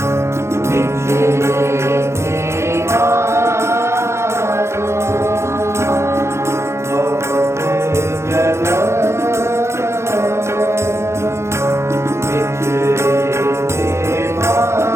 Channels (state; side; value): late; left; 0.13 ms